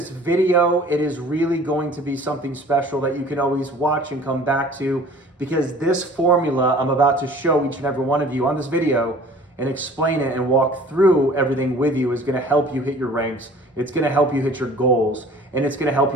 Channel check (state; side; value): normal; both; correlation 0.48